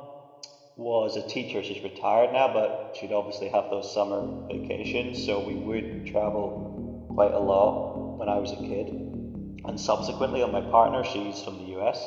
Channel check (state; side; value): identical; both; correlation 1.00